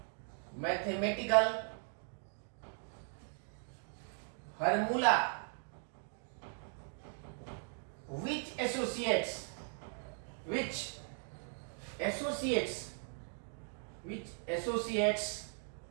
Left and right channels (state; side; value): silent; left; 52 dB below the other